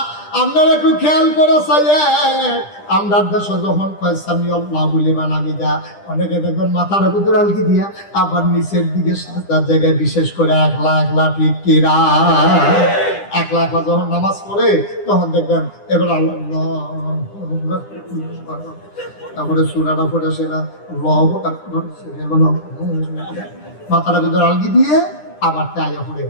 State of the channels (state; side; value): late; right; 10 ms